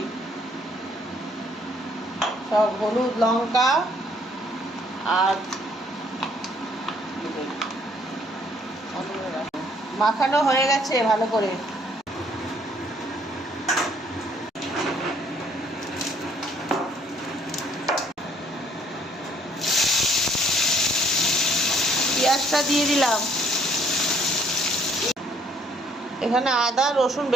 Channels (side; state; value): both; normal; correlation 0.64